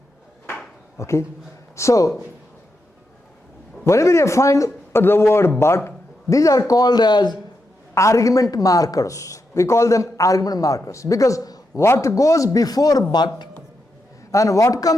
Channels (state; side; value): normal; both; correlation 0.85